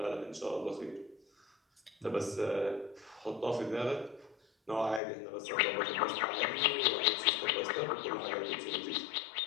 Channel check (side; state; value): right; drops out; at 5.0 s